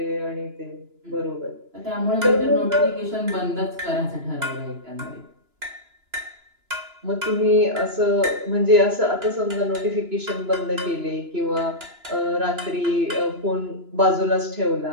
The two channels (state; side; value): late; left; 2.9 ms